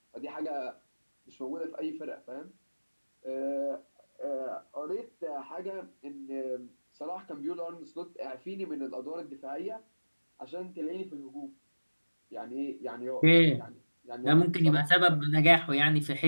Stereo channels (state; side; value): inverted; both; correlation -1.00